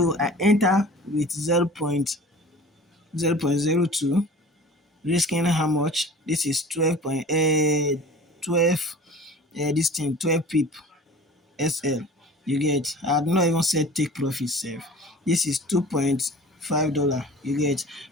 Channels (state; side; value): normal; both; correlation 0.41